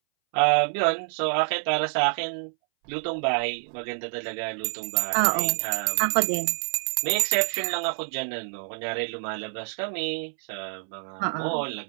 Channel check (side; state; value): left; silent; 60 dB below the other